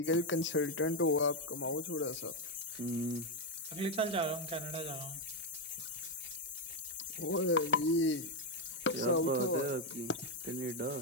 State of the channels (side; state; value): both; normal; correlation 0.04